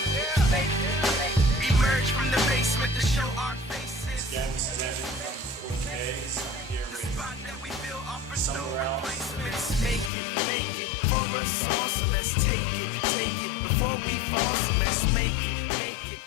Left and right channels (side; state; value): right; drops out; at 10.1 s